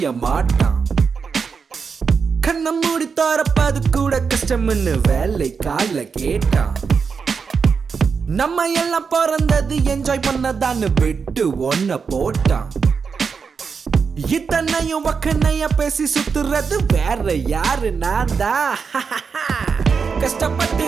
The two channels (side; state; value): left; quieter; 5.6 dB